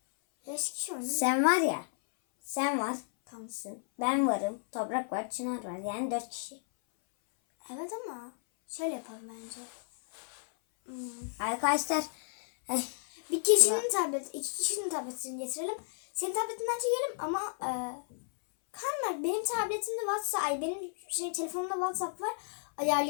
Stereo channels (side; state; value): right; silent; 56 dB below the other